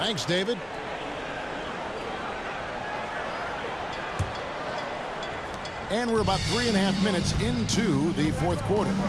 David. And we're about 3.5 minutes into the fourth quarter.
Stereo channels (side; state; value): both; identical; correlation 1.00